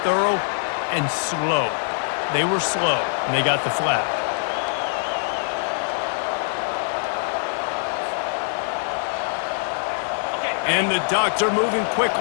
thorough and slow. They were slow, and they got the flag. And the Ducks are moving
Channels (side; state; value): right; silent; digital silence